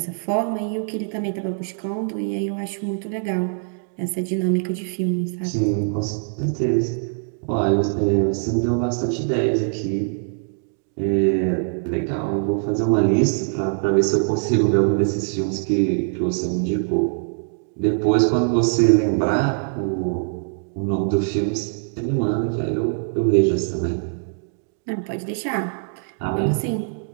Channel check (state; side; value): silent; left; digital silence